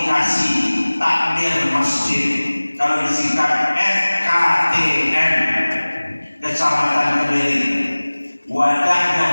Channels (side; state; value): both; inverted; correlation -1.00